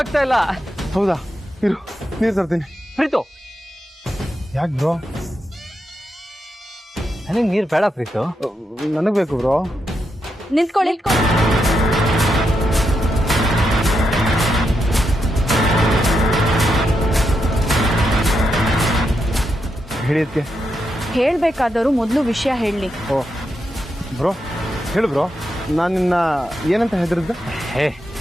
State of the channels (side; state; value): both; normal; correlation 0.84